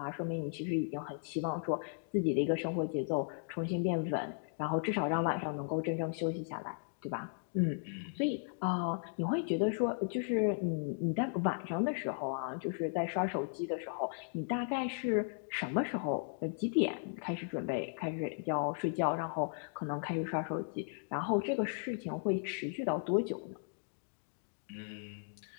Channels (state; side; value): silent; right; digital silence